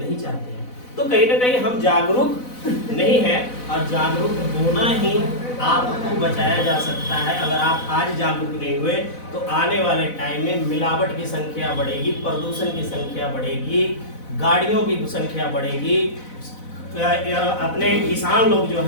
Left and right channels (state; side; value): late; right; 4.0 ms